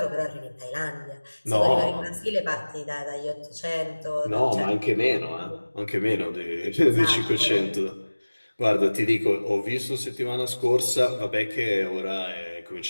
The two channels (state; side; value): inverted; both; correlation -1.00